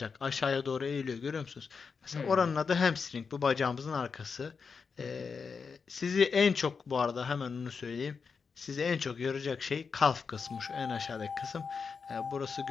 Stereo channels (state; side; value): quieter; right; 5.5 dB